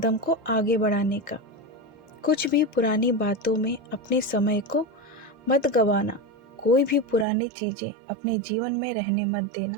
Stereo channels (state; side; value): drops out; left; at 7.2 s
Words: को आगे बढ़ाने का। कुछ भी पुरानी बातों में अपने समय को मत गवाना। कोई भी पुरानी चीजें अपने जीवन में रहने मत